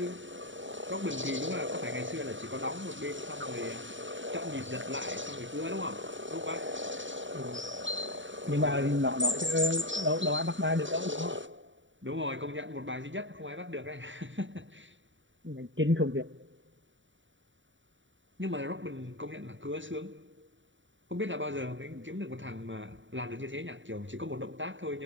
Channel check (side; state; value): left; late; 0.55 ms